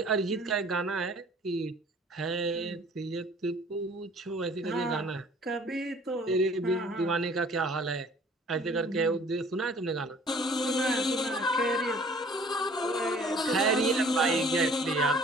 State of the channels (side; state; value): both; normal; correlation 0.53